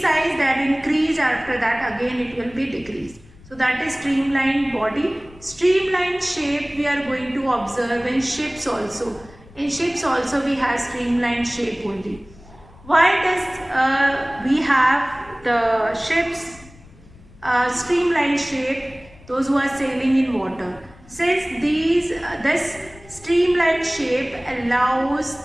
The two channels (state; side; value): noise; left; rumble, 23 dB below the sound